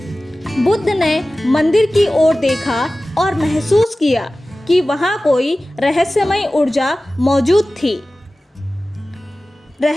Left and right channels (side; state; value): both; normal; correlation 0.96